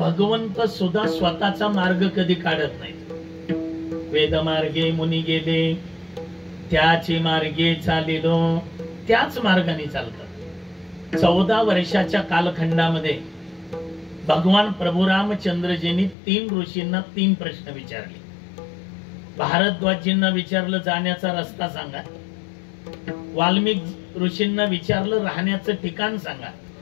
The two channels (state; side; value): drops out; right; at 16.2 s